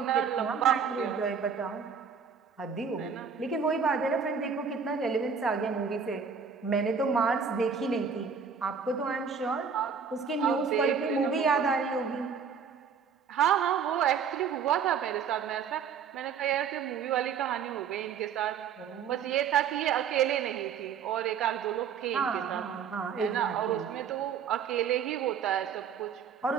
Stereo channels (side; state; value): left; quieter; 6.6 dB